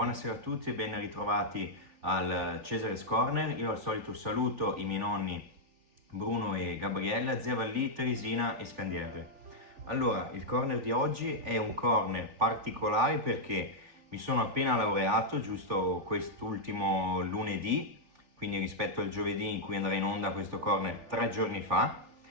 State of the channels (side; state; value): left; late; 3.4 ms